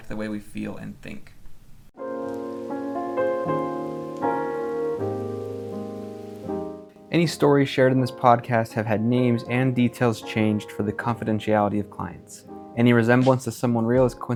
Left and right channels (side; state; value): both; identical; correlation 1.00